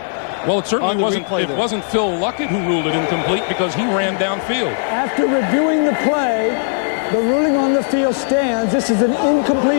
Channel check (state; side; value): silent; right; digital silence